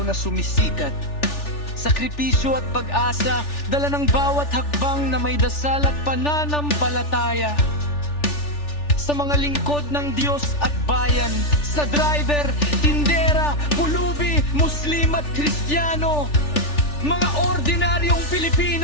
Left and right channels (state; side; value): late; right; 3.4 ms